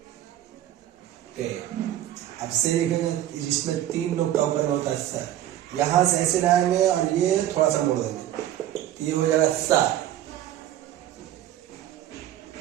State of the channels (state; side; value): quieter; left; 12.4 dB